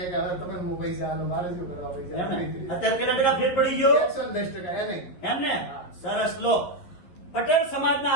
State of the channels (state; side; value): late; right; 11 ms